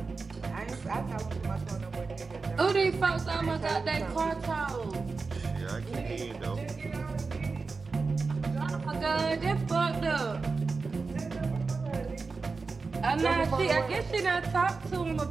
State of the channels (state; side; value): quieter; left; 4.3 dB